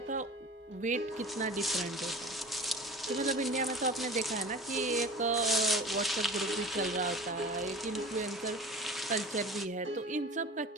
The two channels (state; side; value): normal; both; correlation 0.38